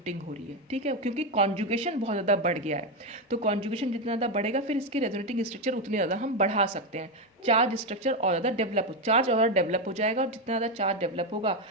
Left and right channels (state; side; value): normal; both; correlation 0.09